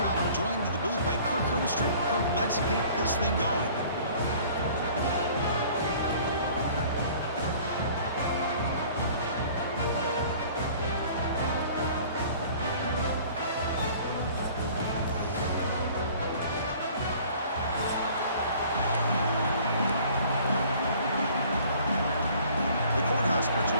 joined in the booth by Kirk Herbstreit. Kirk, let's get this thing going. Will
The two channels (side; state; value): both; inverted; correlation -0.51